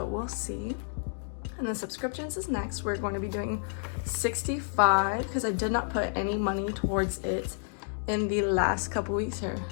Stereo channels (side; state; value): right; silent; digital silence